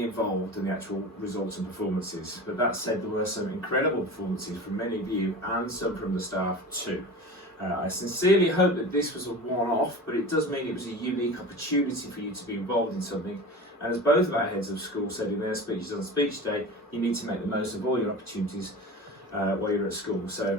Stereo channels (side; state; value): both; normal; correlation 0.33